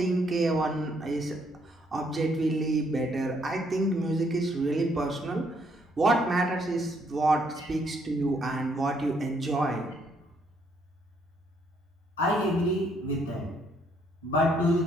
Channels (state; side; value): normal; both; correlation 0.70